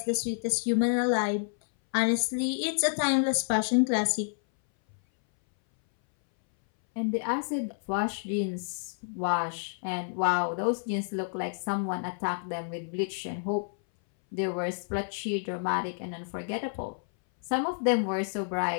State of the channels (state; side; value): silent; right; 58 dB below the other